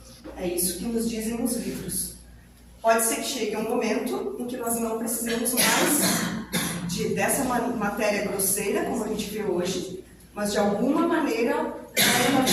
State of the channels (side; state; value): both; identical; correlation 1.00